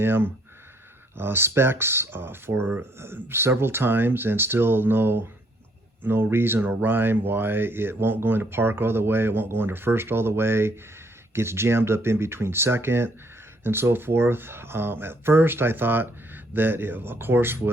specs for several times, and still no reason or rhyme why it won't go into park all the way, it won't go into first all the way, gets jammed up in between second and so forth. At first I thought that it, of course,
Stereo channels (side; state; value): both; normal; correlation 0.67